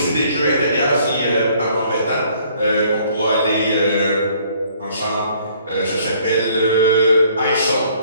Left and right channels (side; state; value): both; inverted; correlation -0.60